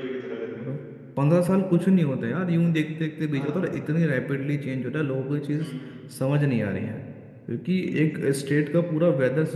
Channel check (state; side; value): identical; both; correlation 1.00